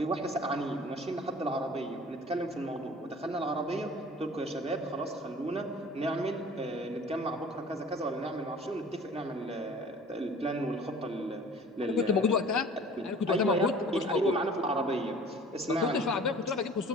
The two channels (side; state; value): both; normal; correlation 0.46